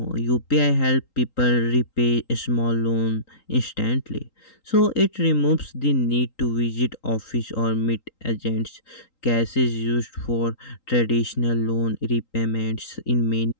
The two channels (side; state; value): right; late; 3.8 ms